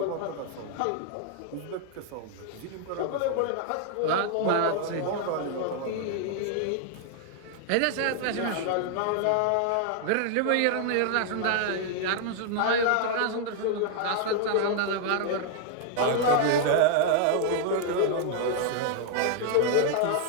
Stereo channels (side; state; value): both; different; correlation 0.00